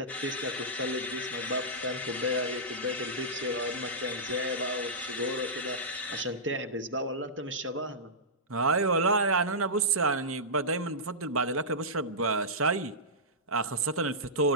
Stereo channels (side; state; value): both; normal; correlation -0.15